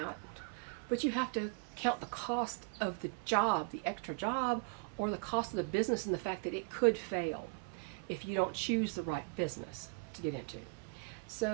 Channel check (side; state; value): left; quieter; 36.6 dB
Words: but you have to count the cost of the job, the extra job, or the cost of the business and the fact that it could fail if you don't choose the right business to get into.